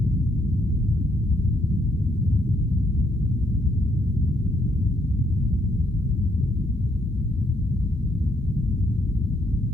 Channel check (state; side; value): normal; both; correlation 0.72